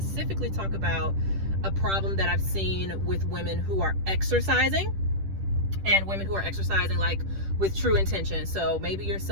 talk about a problem that I've seen with women who are exercising, and women who are exercising like with true intention. So maybe you're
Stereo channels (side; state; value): left; late; 10 ms